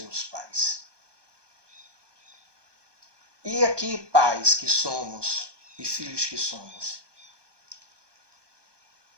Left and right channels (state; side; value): late; left; 1.2 ms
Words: pais. E aqui, pais que somos e filhos que somos,